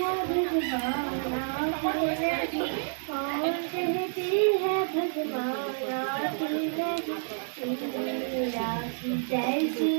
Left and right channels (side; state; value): left; silent; 58 dB below the other